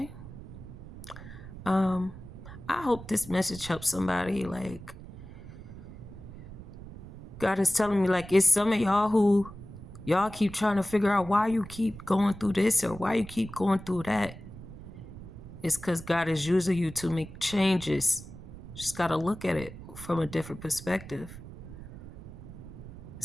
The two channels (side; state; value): right; noise; rumble, 14 dB below the sound